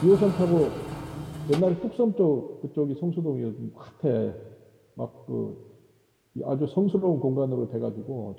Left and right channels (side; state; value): both; identical; correlation 1.00